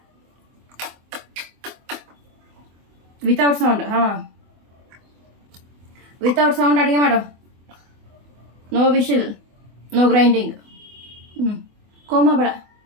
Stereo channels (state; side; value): late; left; 24 ms